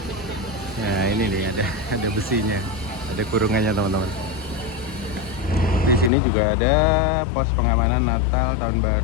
Nah ini nih ada besinya, ada kurungannya teman-teman. Di sini juga ada pos pengamanan Natal tahun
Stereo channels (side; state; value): right; drops out; at 6.1 s